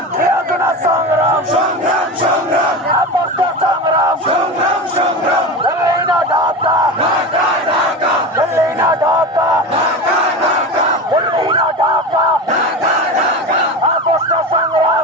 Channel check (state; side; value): normal; both; correlation 0.26